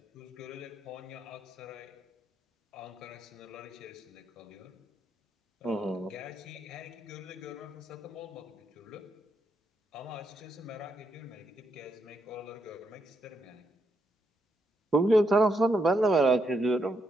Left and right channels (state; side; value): normal; both; correlation 0.80